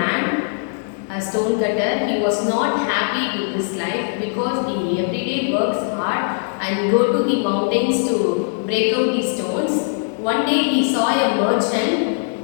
a stone cutter. He was not happy with his life because he every day works hard and go to the mountains to break out the stones. One day he saw a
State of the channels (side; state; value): right; silent; digital silence